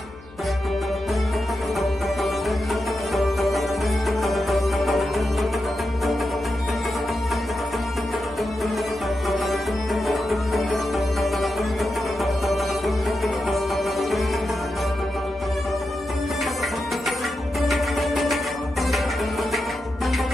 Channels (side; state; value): left; noise; hum, 22 dB below the sound